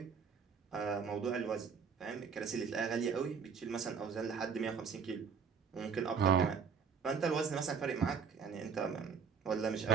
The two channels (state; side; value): quieter; left; 6.3 dB